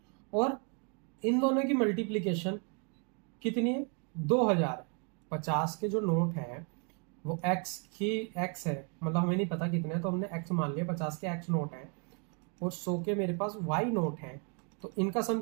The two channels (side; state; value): left; quieter; 37.7 dB